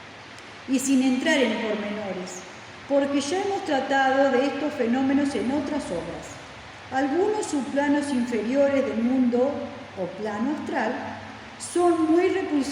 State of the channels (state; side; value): identical; both; correlation 1.00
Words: y sin entrar en pormenores, porque ya hemos tratado de estos fenómenos en otras obras. Algunos subplanos inferiores del mundo o plano astral son muy